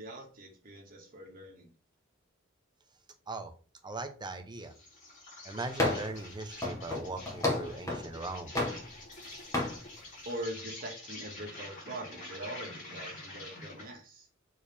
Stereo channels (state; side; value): normal; both; correlation 0.24